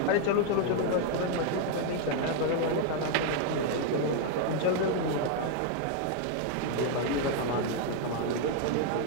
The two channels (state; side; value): different; both; correlation 0.00